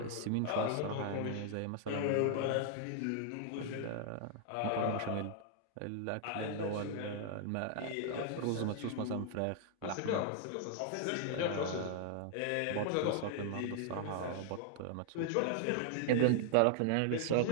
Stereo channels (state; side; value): different; both; correlation 0.00